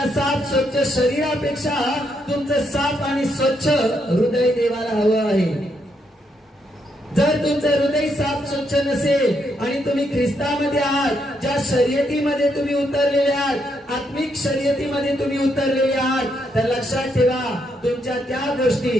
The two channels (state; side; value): normal; both; correlation 0.77